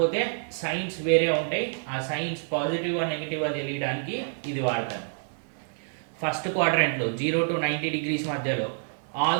సైన్స్ వేరే ఉంటాయి. ఆ సైన్స్ పాజిటివ్ నెగిటివ్ తెలియడానికి ఇది వాడతాను. ఫస్ట్ క్వాడ్రంట్లో 0 టు 90 డిగ్రీస్ మధ్యలో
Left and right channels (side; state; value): left; silent; digital silence